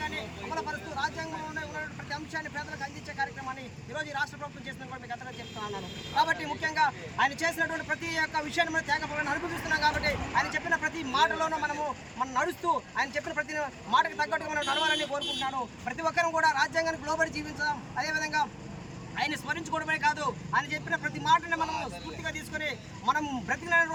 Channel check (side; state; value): both; identical; correlation 1.00